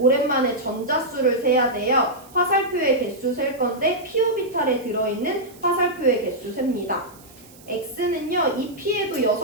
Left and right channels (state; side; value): noise; right; hiss, 24 dB below the sound